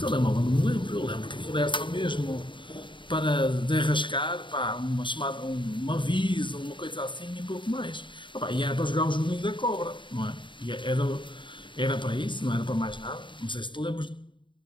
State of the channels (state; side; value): late; right; 0.23 ms